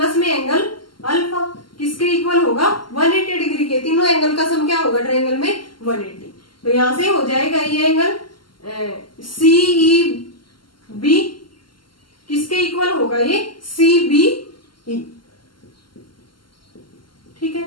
में एंगल अल्फा किसके इक्वल होगा 180 डिग्री के। तीनों एंगल का सम क्या होगा ट्रायंगल में 180। तो यहां से हो जाएगा ये एंगल CEB किसके इक्वल होगा ये CBE, ठीक है।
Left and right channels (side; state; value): right; late; 0.72 ms